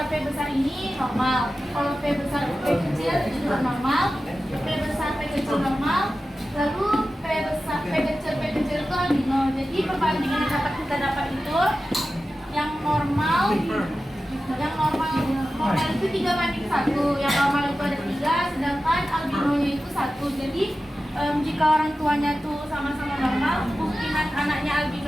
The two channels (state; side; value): normal; both; correlation 0.94